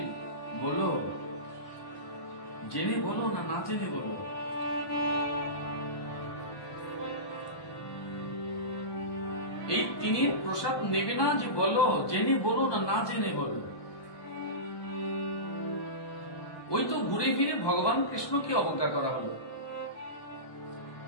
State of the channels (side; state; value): right; late; 1.2 ms